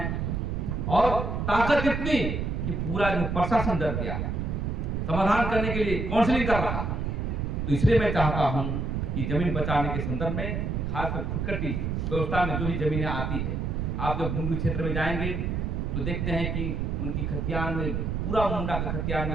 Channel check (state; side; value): noise; right; rumble, 1 dB below the sound